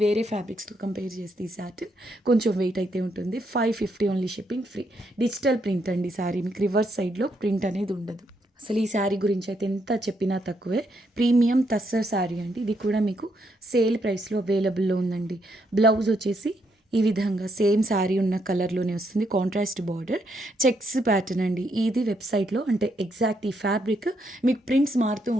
వేరే ఫ్యాబ్రిక్స్తో కంపేర్ చేస్తే ఈ సాటిన్ కొంచెం వెయిట్ అయితే ఉంటుంది. 550 only, shipping free. Digital print అండి శారీ. మీకు రివర్స్ సైడ్లో ప్రింట్ అనేది ఉండదు. అసలు ఈ శారీ గురించి అయితే ఎంత చెప్పినా తక్కువే. ప్రీమియం తస్సర్ శారీ అండి. ఇది కూడా మీకు సేల్ ప్రైస్లో అవైలబుల్లో ఉందండి. బ్లౌజ్ వచ్చేసి ఈ విధంగా సేమ్ శారీ ఉన్న కలర్లోనే వస్తుంది. కాంట్రాస్ట్ బార్డర్, చెక్స్ ప్యాటర్న్ అండి. ఇది వెబ్సైట్లో అంటే ఎగ్జాక్ట్ ఈ ఫ్యాబ్రిక్ మీకు ప్రింట్స్ మారుతూ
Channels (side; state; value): both; normal; correlation 0.76